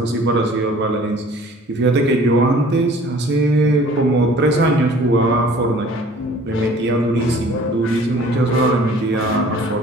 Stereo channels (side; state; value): both; normal; correlation 0.51